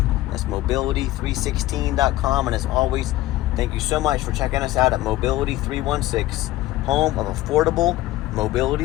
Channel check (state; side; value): quieter; right; 16.3 dB